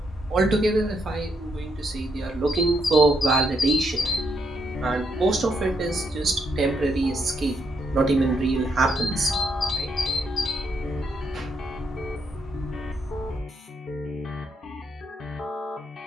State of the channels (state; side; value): normal; both; correlation 0.77